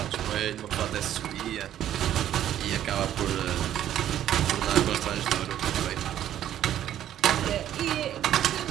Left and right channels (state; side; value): quieter; left; 11.4 dB